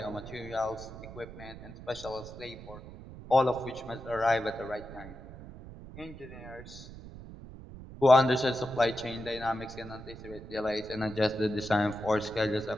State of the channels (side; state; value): right; noise; rumble, 14 dB below the sound